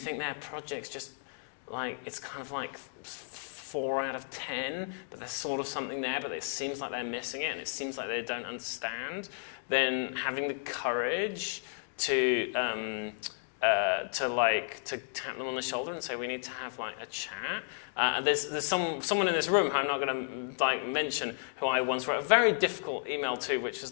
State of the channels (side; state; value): right; silent; digital silence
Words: their project's just like, it's kind of like 4 out of 10, but there's sort of something there, but it seems like they're missing it and it seems like they don't understand, then having the courage to tap them on the shoulder and say, we need to have like a chat. And there's someone in this room who I'm not going to mention, who I once wrote a very difficult email to, which was